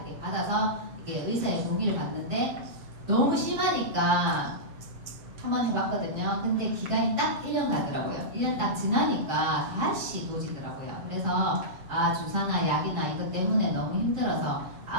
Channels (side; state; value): left; late; 7.4 ms